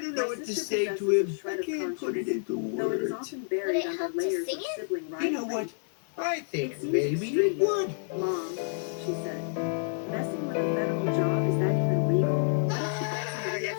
don't know what to say to him. I can't put it into words. Would it help to sing it? You know what? I think maybe it would. Mom, she said, messing with a federal job, is that even legal? What if she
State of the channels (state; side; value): silent; right; digital silence